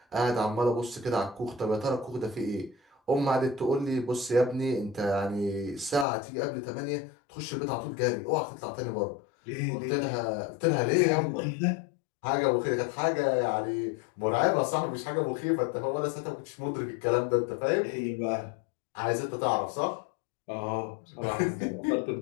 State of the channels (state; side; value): drops out; right; at 6.1 s